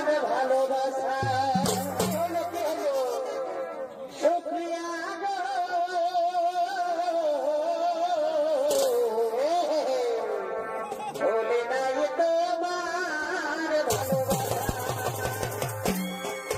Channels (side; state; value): both; identical; correlation 1.00